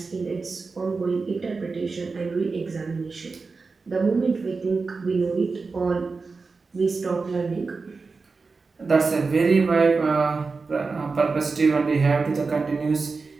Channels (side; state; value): left; quieter; 4.3 dB